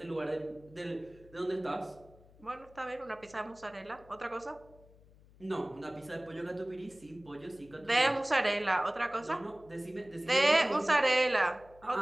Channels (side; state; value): left; noise; hum, 25 dB below the sound